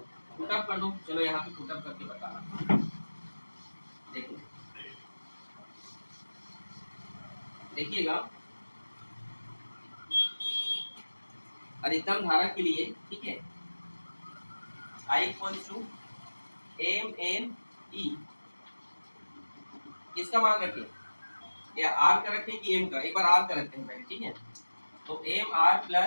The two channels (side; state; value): both; inverted; correlation -1.00